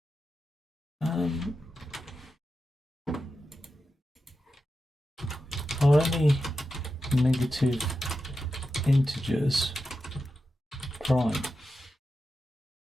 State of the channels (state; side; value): normal; both; correlation 0.90